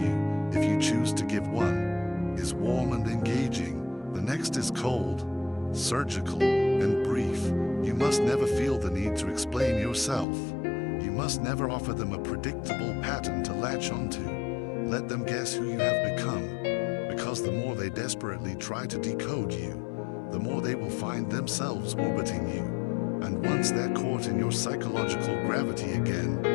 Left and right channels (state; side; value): drops out; right; at 10.2 s